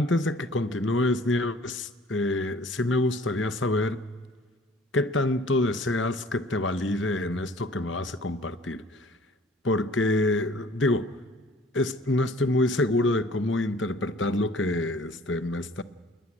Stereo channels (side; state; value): both; normal; correlation 0.52